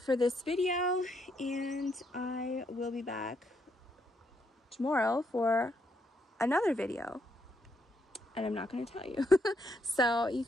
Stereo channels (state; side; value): normal; both; correlation 0.76